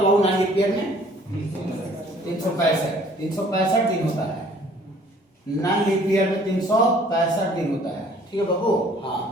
बाबू? नॉन लीप ईयर में 365 दिन होता है। नॉन लीप ईयर में 365 दिन होता है। ठीक है बाबू। हाँ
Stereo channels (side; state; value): both; normal; correlation 0.56